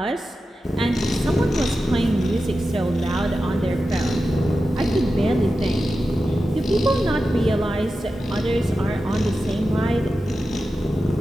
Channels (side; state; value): both; normal; correlation 0.92